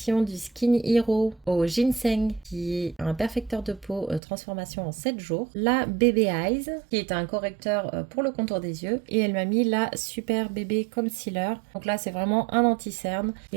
du Skin Hero au ginseng, qui est un perfecteur de peau transformation en 7 jours. La Baby Eyes, qui est un correcteur pour le contour des yeux. Et elle m'a mis la Super Bébé Concealer. Donc là, c'est vraiment un anti-cerne. Et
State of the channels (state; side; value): drops out; left; at 4.2 s